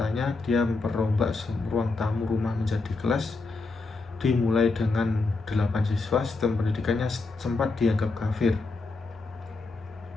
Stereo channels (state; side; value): quieter; right; 3.7 dB